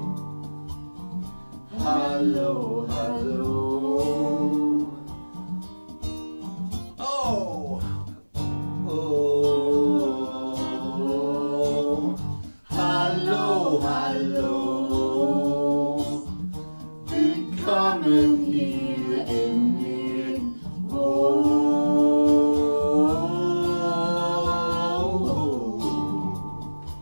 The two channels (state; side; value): inverted; both; correlation -1.00